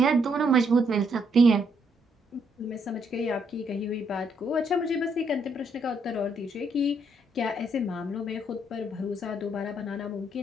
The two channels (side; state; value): both; normal; correlation 0.72